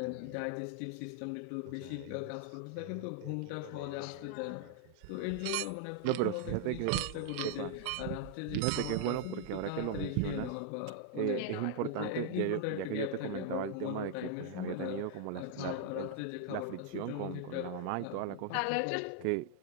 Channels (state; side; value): different; both; correlation 0.00